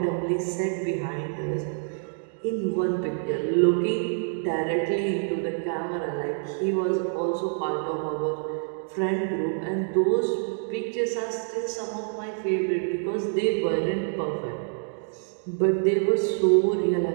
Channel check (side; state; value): left; silent; 60 dB below the other